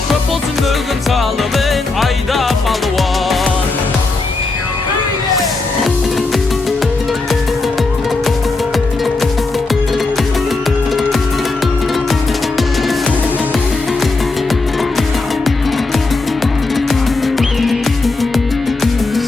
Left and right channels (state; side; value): quieter; right; 3.6 dB